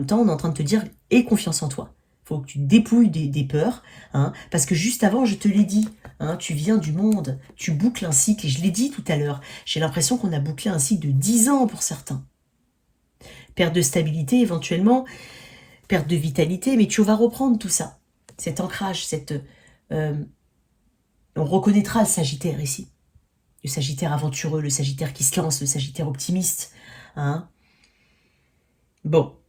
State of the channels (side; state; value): both; identical; correlation 1.00